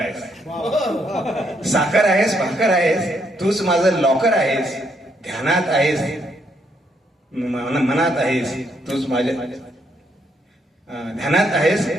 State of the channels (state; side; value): normal; both; correlation 0.74